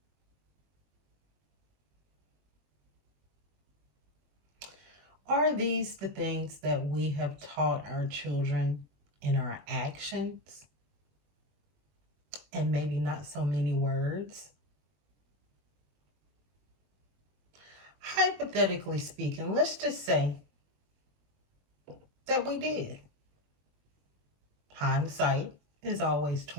Are these the things that we have taught our children in our actions and maybe not so many words? Hypothetically speaking, let's just say that we did. Hindsight is always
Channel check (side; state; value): left; late; 21 ms